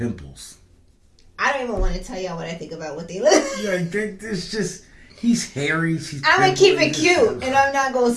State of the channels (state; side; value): identical; both; correlation 1.00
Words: I don't even want to tell y'all what I think about what they look. Like, it's just, he's hairy. She's I'm going to keep it pimply. cute, and I'm not going to